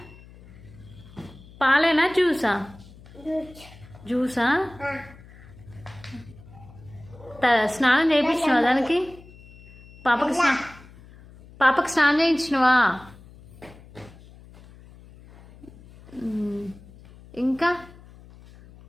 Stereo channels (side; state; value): left; noise; hum, 21 dB below the sound